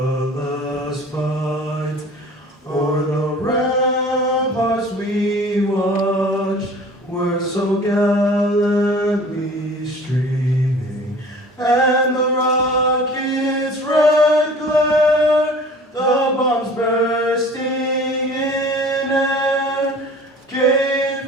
fight o'er the ramparts we watched were so gallantly streaming, and the rocket's red glare, the bombs bursting in air, came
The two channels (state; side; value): normal; both; correlation 0.46